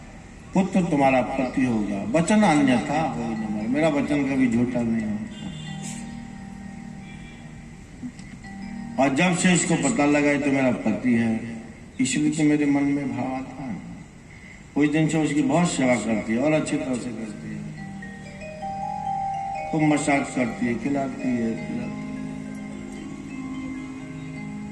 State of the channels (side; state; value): both; identical; correlation 1.00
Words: पुत्र तुम्हारा पति होगा, वचन अन्यथा हो न, मेरा वचन कभी झूठा नहीं होता। और जब से इसको पता लगा तो मेरा पति है, इसलिए तो मेरे मन में भाव आता है। उस दिन से उसकी बहुत सेवा करती है और अच्छी तरह से करती है, खूब मसाज करती है, खिलाती है।